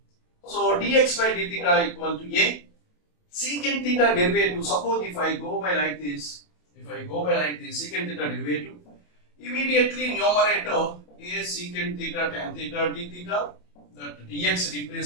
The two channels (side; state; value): right; late; 27 ms